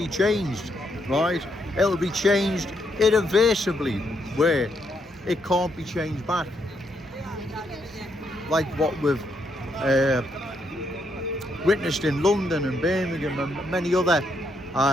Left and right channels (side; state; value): both; normal; correlation 0.76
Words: changed, right? It'll be changed irreversibly, where it can't be changed back. Like what we've witnessed in London and Birmingham and many other